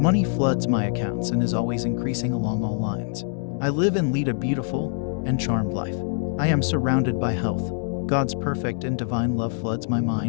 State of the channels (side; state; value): right; silent; 62 dB below the other